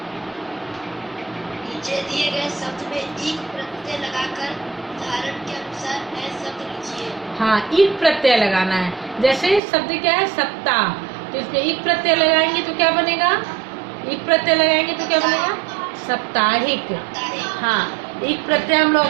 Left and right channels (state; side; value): drops out; left; at 9.6 s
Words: नीचे दिए गए शब्द में एक प्रत्यय लगाकर उदाहरण के अनुसार नए शब्द लिखिए। हाँ, एक प्रत्यय लगाना है। जैसे शब्द क्या है? सप्ताह, तो इसमें एक प्रत्यय लगाएंगे तो क्या बनेगा? एक प्रत्यय लगाएंगे तो क्या बनेगा? साप्ताहिक। हाँ, एक प्रत्यय हम लोग